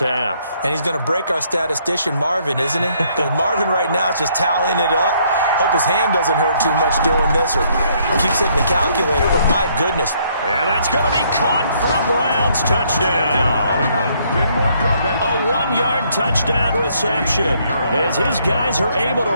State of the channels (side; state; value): both; inverted; correlation -0.68